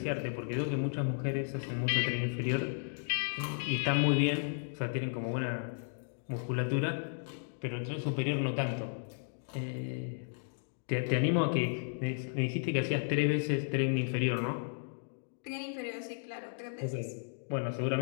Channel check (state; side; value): silent; right; digital silence